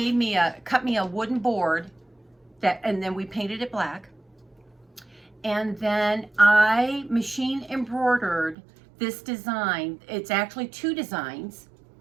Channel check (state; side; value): drops out; left; at 8.6 s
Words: me cut me a wooden board that, and then we painted it black. And then I machine embroidered this design. It's actually 2 designs,